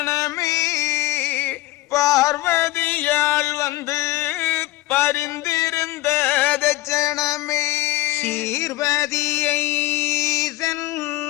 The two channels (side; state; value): right; quieter; 18.3 dB